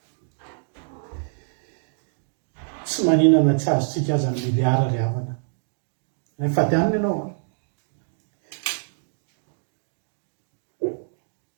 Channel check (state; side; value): silent; left; digital silence